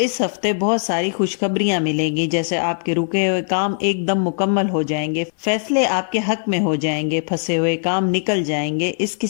ہفتے بہت ساری خوشخبریاں ملیں گی، جیسے آپ کے رکے ہوئے کام ایک دم مکمل ہو جائیں گے، فیصلے آپ کے حق میں ہو جائیں گے، پھنسے ہوئے کام نکل جائیں گے۔ اس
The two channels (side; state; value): right; silent; digital silence